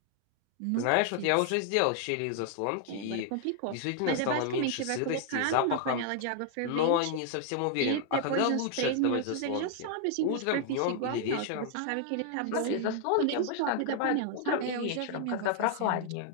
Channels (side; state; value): both; different; correlation 0.00